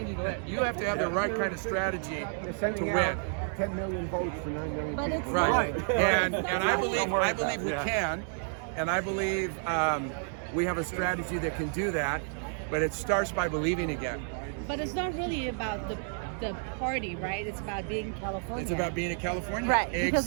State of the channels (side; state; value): left; silent; 57 dB below the other